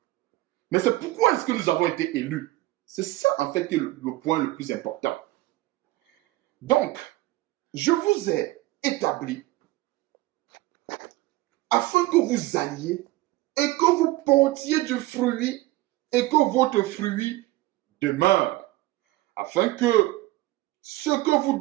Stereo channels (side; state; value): left; quieter; 18.2 dB